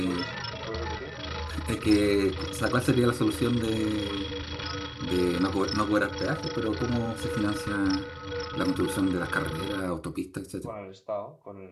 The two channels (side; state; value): both; identical; correlation 1.00